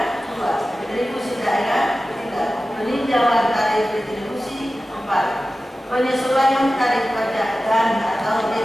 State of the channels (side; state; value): both; normal; correlation 0.95